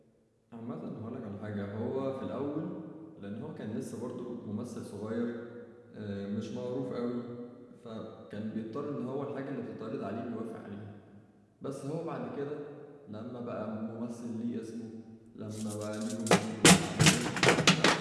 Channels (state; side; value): identical; both; correlation 1.00